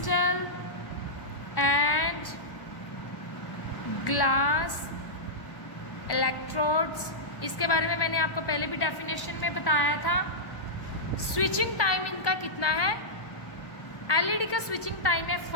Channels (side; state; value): right; late; 1.1 ms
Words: and glass electrodes. इसके बारे में मैंने आपको पहले भी डेफिनेशन में बताया था. स्विचिंग टाइम इनका कितना है? LED का स्विचिंग टाइम है